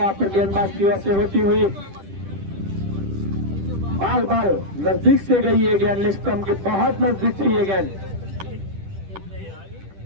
पर गेंदबाज की ओर से होती हुई, बार बार नजदीक से गई है गेंद, लेग स्टंप के बहुत नजदीक थी ये गेंद।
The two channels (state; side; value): late; left; 10 ms